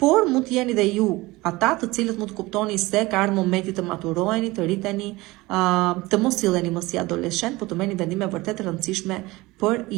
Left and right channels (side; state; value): left; quieter; 20.9 dB